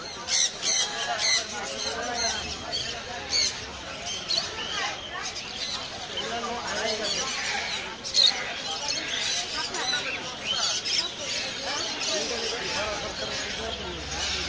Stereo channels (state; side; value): identical; both; correlation 1.00